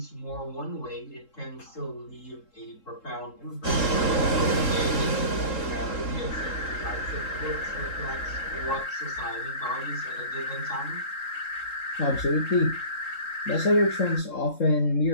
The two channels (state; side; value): late; right; 3.7 ms